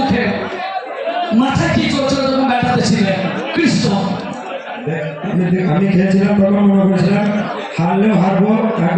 মাথায় কি চলছিল তখন ব্যাটাতে ছিলেন কৃষ্ণ? আমি খেলছিলাম তখন মনে করেছিলাম হারলেও হারবো,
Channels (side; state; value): both; identical; correlation 1.00